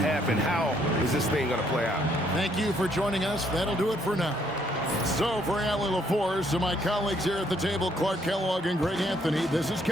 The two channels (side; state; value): both; normal; correlation 0.69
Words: How is this thing gonna play out? Thank you for joining us. That'll do it for now. So for Allie LaForce, to my colleagues here at the table, Clark Kellogg and Greg Anthony, this is